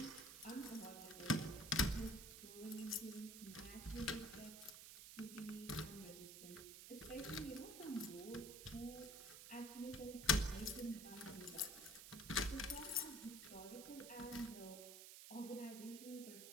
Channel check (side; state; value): right; noise; hiss, 11 dB below the sound